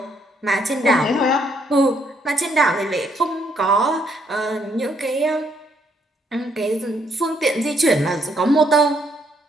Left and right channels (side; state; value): both; normal; correlation 0.71